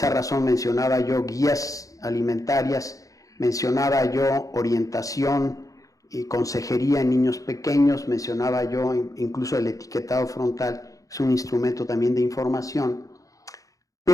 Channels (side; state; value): right; late; 0.16 ms